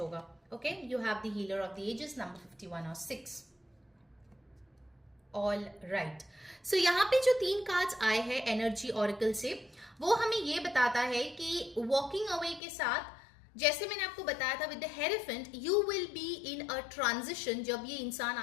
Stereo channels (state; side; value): drops out; right; at 12.6 s